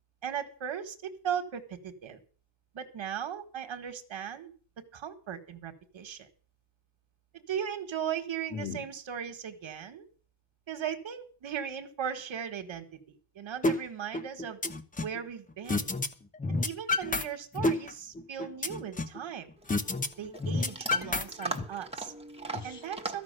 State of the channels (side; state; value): both; normal; correlation 0.23